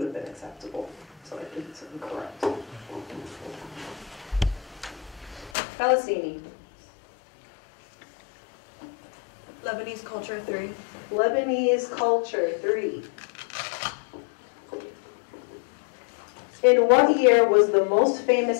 have been acceptable. So I think it's incorrect. Felicini. Lebanese culture 3. Lebanese culture 3. In what year was the most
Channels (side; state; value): right; drops out; at 5.5 s